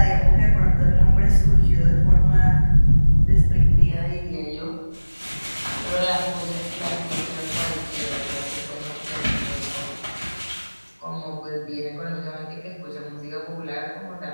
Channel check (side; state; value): both; inverted; correlation -1.00